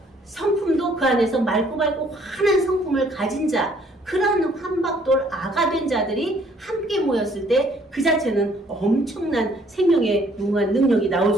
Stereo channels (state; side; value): normal; both; correlation 0.62